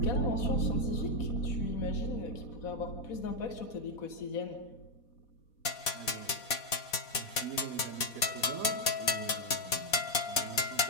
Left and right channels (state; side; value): late; right; 4.1 ms